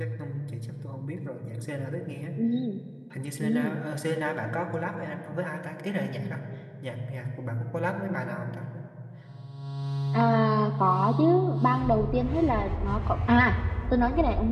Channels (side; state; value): both; identical; correlation 1.00